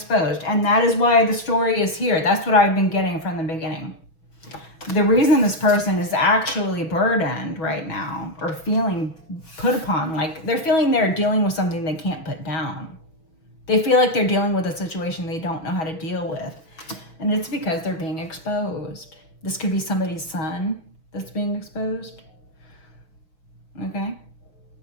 and that is why the story is here. That's what I've been getting from the beginning. The reason this person is actually burdened right now, or feeling put upon, like they're feeling they're dealing with something they can't put down. They feel like they're dealing with a situation they don't know how to deal with. And it's because they're being exposed. This could be somebody's son that's being exposed. Okay?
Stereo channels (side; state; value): right; late; 6.2 ms